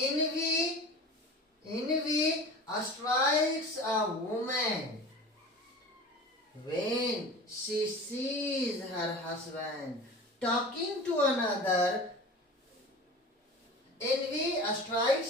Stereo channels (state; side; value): normal; both; correlation 0.36